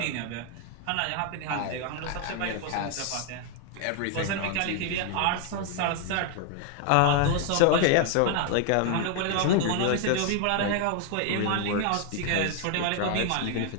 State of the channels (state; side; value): different; both; correlation 0.01